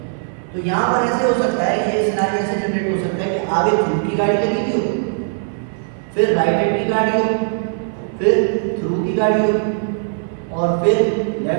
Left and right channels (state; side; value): silent; left; 56 dB below the other